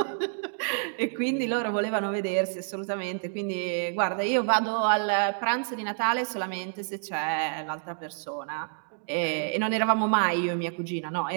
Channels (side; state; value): left; silent; digital silence